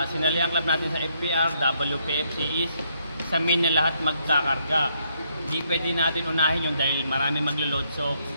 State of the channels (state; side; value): inverted; both; correlation -0.74